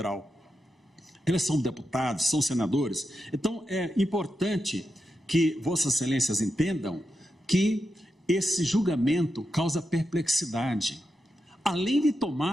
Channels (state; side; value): normal; both; correlation 0.88